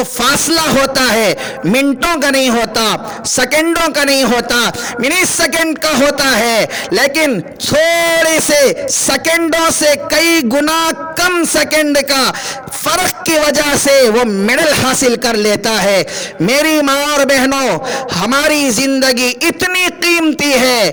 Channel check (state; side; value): identical; both; correlation 1.00